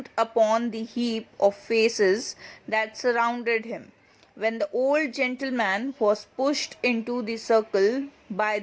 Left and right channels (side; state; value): both; identical; correlation 1.00